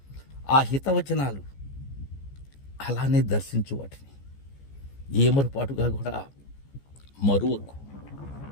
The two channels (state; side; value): late; right; 14 ms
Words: ఆ హితవచనాలు అలానే దర్శించు, వాటిని ఏమరుపాటుగా కూడా మరువకు.